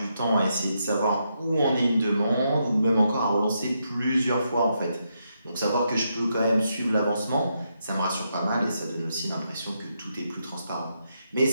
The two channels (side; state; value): both; inverted; correlation -0.81